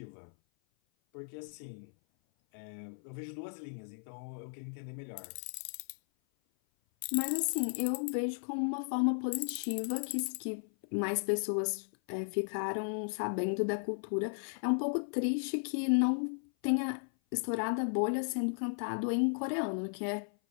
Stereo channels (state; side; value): silent; right; 54 dB below the other